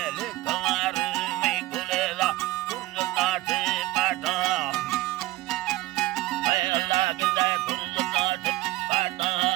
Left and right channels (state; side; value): quieter; left; 17.9 dB